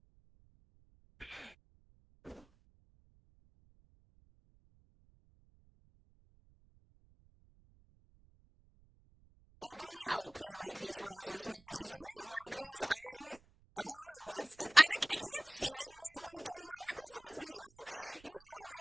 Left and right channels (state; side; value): noise; right; rumble, 27 dB below the sound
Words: I really hope they like these roses, man. If they don't like these, I don't know what's I can't see them not liking the roses. But you know how